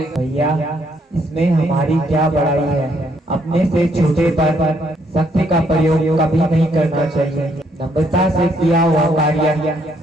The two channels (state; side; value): normal; both; correlation 0.70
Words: भैया, इसमें हमारी क्या बड़ाई है? अपने से छोटे पर शक्ति का प्रयोग कभी नहीं करना चाहिए। नम्रता से किया हुआ कार्य